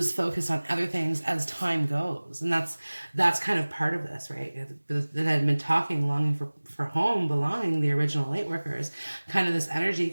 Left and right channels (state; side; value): inverted; both; correlation -1.00